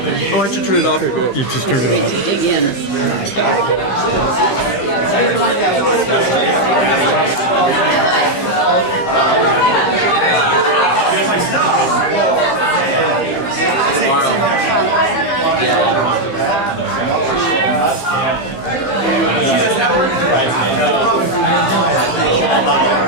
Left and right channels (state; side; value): late; right; 15 ms